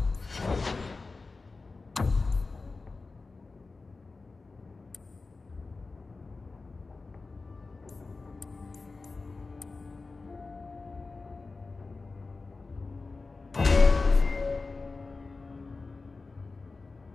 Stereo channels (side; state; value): right; quieter; 3.8 dB